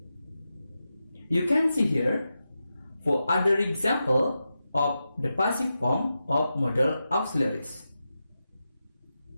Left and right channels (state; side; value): inverted; both; correlation -0.90